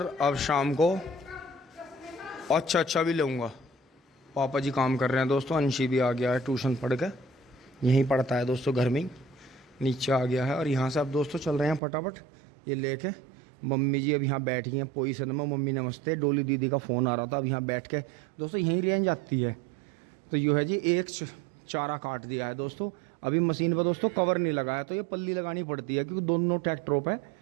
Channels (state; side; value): drops out; left; at 11.8 s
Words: अब शाम को अच्छा भी लूँगा। पापा जी काम कर रहे हैं दोस्तों। अंशी भी आ गया है ट्यूशन पढ़ के, यहीं पढ़ता है दोस्तों, घर में ही नीचे आ गया है। और यहाँ से अब दोस्तों चल रहे हैं फटाफट ये लेके। मम्मी जी अब यहाँ बैठी हैं पोजीशन में। मम्मी नमस्ते। डोली दीदी का फ़ोन आ रहा था। अब यहाँ बैठ के दोस्तों यहीं रेंज आती है। तो यूँ है जी, एक चारा काट दिया है दोस्तों। अभी मशीन पर दोस्तों कवर नहीं लगा है, तो ये पल्ली लगानी पड़ती है क्योंकि दोनों ट्रैक्टरों पे